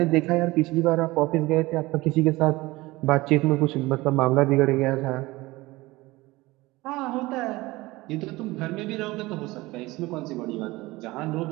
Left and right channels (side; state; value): left; quieter; 20.3 dB